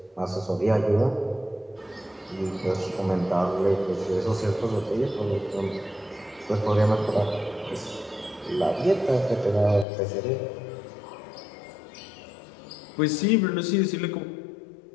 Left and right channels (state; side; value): drops out; right; at 9.9 s